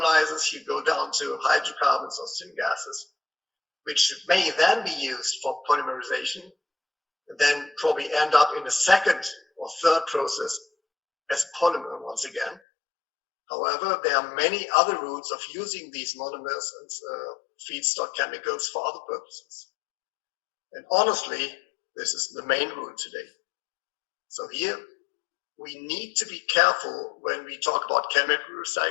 you go down to hydrocarbons or syngases, which may then be used for polymerization, and then probably end up in a second or third process as polymer once again. However, there are many other routes of using these monomers and feedstock chemicals for other purposes. And honestly, this is the main route today. So here, we need to be careful when we talk about chemical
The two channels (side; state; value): right; drops out; at 12.6 s